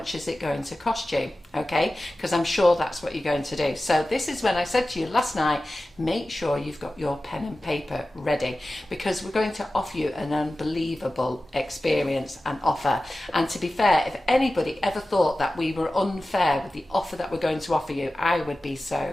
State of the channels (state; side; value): normal; both; correlation 0.95